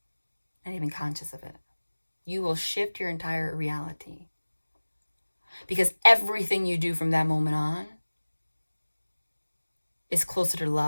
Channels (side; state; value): both; inverted; correlation -1.00